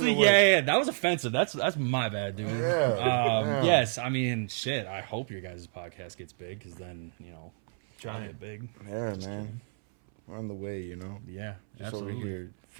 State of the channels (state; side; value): silent; left; 58 dB below the other